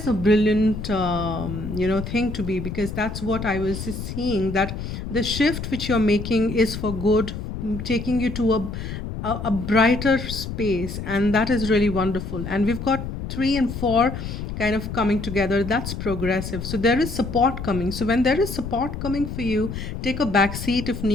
a brilliant, thing to be, because that's what I was seeing, that the shift which you're making is for good, taking you to a brighter space. And that is really wonderful. And we've got 3 and 4 kind of coming together. That's progressive. So there is support coming. So when there is support coming for you, take a back seat if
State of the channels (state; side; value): noise; left; rumble, 7 dB below the sound